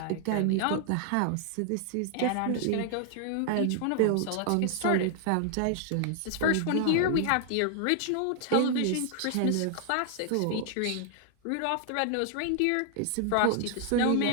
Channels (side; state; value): both; different; correlation 0.00